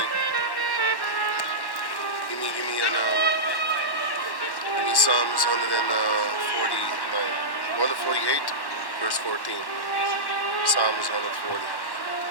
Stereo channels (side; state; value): right; late; 1.1 ms